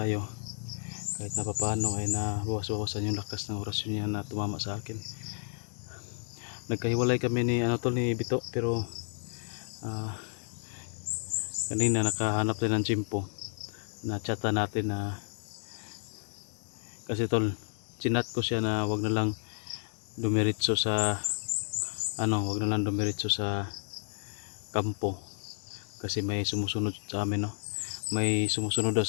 kahit na papaano ay nabawas-bawasan yung lakas ng orasyon niya na tumama sa akin. Nagkahiwalay kami ni tol, ni Bito, pero kanina nakahanap din ng tsimpo na chata natin na kasi tol, chinat ko siya na wag na lang dumiretso sa wag na lang dumiretso sa kampo kasi may sumusunod sa amin, no? May sumusunod daw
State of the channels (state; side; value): silent; right; digital silence